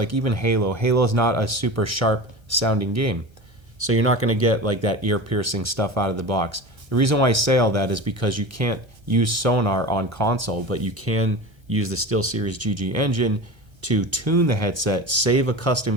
even Halo. Halo is not a super sharp sounding game. So you're not going to get like that ear-piercing stuff out of the box. The reason why I say all that is because you can't use sonar on console, but you can use the SteelSeries GG engine to tune the headset, save a custom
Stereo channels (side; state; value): left; late; 1.3 ms